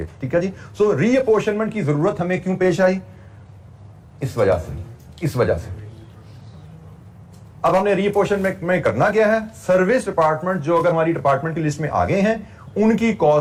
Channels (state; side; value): identical; both; correlation 1.00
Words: ठीक है जी। सो रीअपोर्शनमेंट की जरूरत हमें क्यों पेश आई, इस वजह से अब हमने रीअपोर्शनमेंट में करना क्या है, सर्विस डिपार्टमेंट जो अगर हमारी डिपार्टमेंट की लिस्ट में आ गए हैं, उनकी